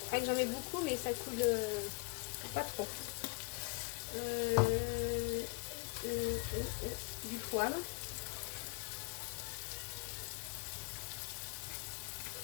J'en mets beaucoup, mais ça coule pas trop. Du poivre.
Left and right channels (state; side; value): quieter; right; 31.4 dB